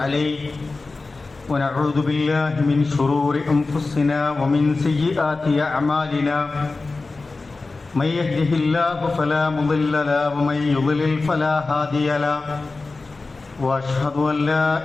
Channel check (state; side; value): quieter; right; 3.7 dB